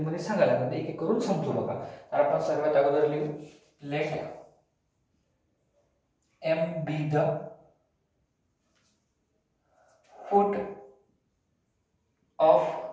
सांगायला लागेल. एक एक करून समजू बघा. तर आपण सर्वात अगोदर लिहू late M be the foot of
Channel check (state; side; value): identical; both; correlation 1.00